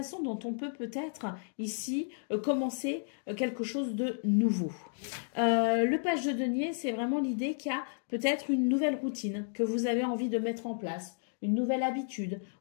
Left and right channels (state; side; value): silent; right; digital silence